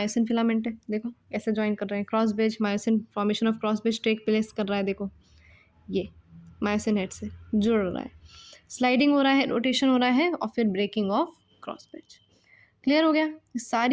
फिलामेंट है, देखो कैसे ज्वाइन कर रहे हैं, cross bridge myosin, formation of cross bridge take place कर रहा है, देखो ये मायोसिन हेड से जुड़ रहा है, स्लाइडिंग हो रहा है, रोटेशन हो रहा है और फिर breaking of cross bridge. Clear हो गया, ये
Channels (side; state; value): both; identical; correlation 1.00